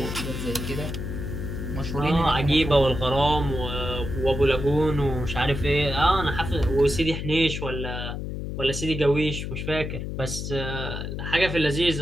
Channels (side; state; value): left; noise; hum, 5 dB below the sound